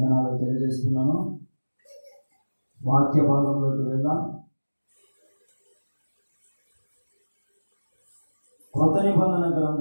తెలియజేస్తున్నాను. వాక్య భాగంలోకి వెళ్దాం. కొత్త నిబంధన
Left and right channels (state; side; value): inverted; both; correlation -1.00